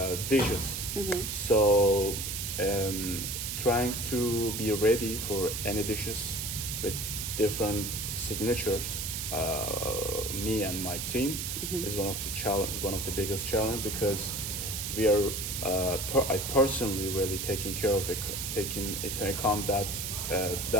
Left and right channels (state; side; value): noise; right; hiss, 4 dB below the sound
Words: dishes. So trying to be ready for any dishes with different signatures. Me and my team is one of the biggest challenge because we are I personally really taking care of it, taking into account that